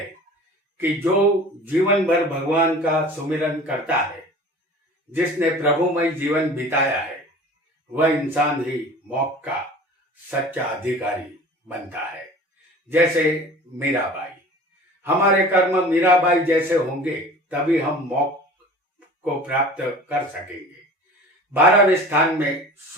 कि जो जीवन भर भगवान का सुमिरन करता है, जिसने प्रभुमय जीवन बिताया है, वह इंसान ही मोक्ष का सच्चा अधिकारी बनता है। जैसे मीराबाई, हमारे कर्म मीराबाई जैसे होंगे तभी हम मोक्ष को प्राप्त कर सकेंगे। 12वें स्थान में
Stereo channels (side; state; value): both; normal; correlation 0.41